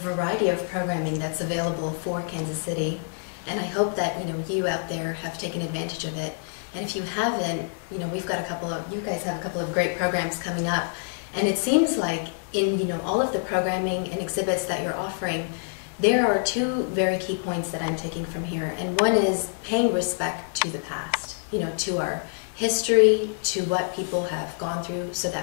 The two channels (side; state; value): right; silent; digital silence